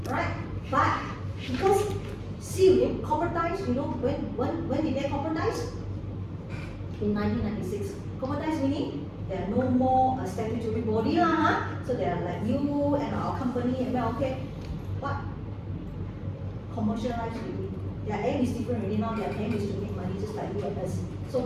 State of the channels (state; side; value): identical; both; correlation 1.00